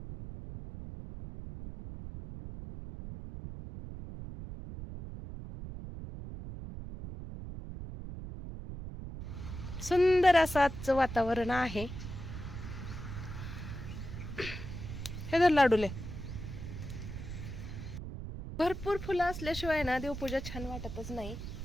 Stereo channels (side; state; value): right; noise; rumble, 8 dB below the sound